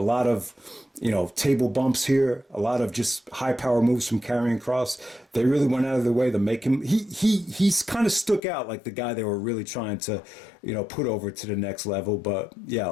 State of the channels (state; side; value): drops out; right; at 8.4 s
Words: lot of, table bumps here. A lot of just high power moves from Karrion Kross. They really went out of their way to make him. He's kind of stuck out like the guy they were really trying to, put over to the next level. But